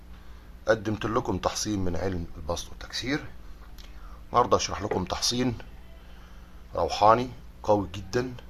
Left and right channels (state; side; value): identical; both; correlation 1.00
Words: قدمت لكم تحصين من علم البسط والتكسير. النهاردة أشرح لكم تحصين روحاني قوي جدا